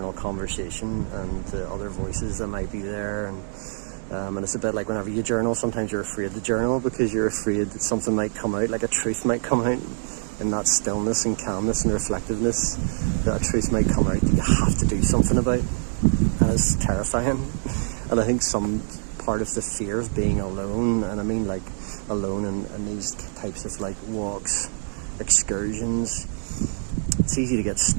conversation and the other voices that might be there, and And it's a bit like whenever you journal, sometimes you're afraid to journal because you're afraid that something might come out, like a truth might come out in that stillness and calmness and reflectiveness, that a truth might come out that you have to do something about. And it's terrifying. And I think some part of the fear of being alone, and I mean like alone in these types of like walks, excursions, it's easy to get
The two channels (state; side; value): silent; left; digital silence